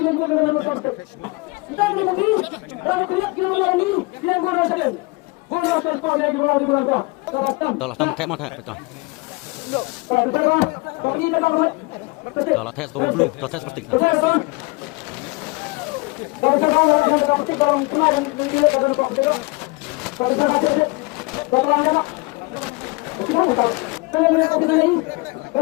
Tolak tam kayak mana betul. Tolak tes bau blue, tolak tes seperti.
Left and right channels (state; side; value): quieter; right; 26.2 dB